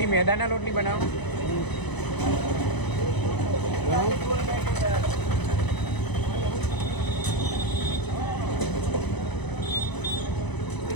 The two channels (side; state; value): right; late; 0.99 ms